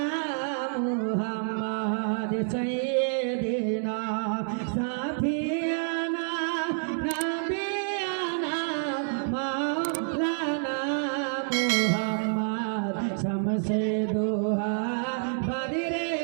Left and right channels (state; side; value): silent; left; digital silence